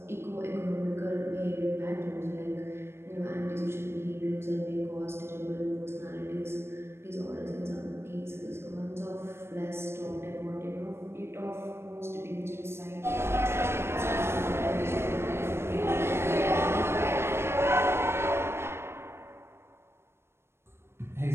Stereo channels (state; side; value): late; left; 0.12 ms